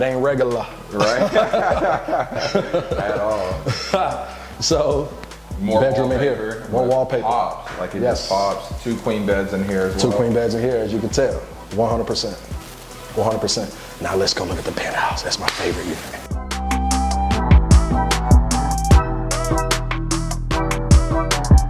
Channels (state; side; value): identical; both; correlation 1.00